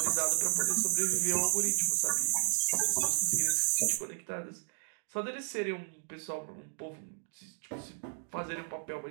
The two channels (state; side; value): silent; left; digital silence